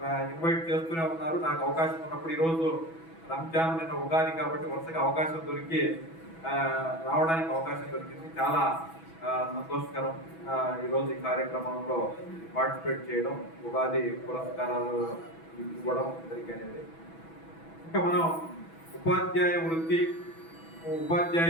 ఇన్వైట్ చేస్తూనే ఉన్నారు. నాకు అవకాశం ఉన్నప్పుడు ఈరోజు రంజాన్ నిన్న ఉగాది కాబట్టి వరుసగా అవకాశం దొరికి రావడానికి అవకాశం దొరికింది. చాలా సంతోషకరం ఈరోజు ఈ కార్యక్రమంలో పార్టిసిపేట్ చేయడం, ఉగాది పురస్కారాలు ఇవ్వడం జరిగినది. ఇంకా మనం ఉపాధ్యాయ వృత్తి,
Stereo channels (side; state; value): right; late; 6.1 ms